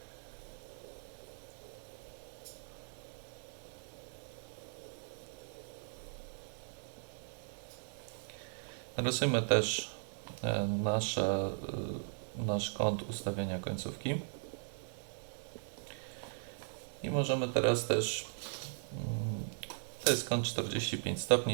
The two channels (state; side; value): silent; left; digital silence